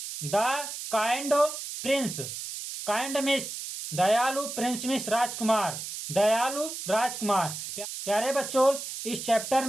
the kind Prince. Kind miss दयालु, प्रिंस मिस राजकुमार, दयालु राजकुमार। प्यारे बच्चों, इस चैप्टर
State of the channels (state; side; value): noise; right; hiss, 7 dB below the sound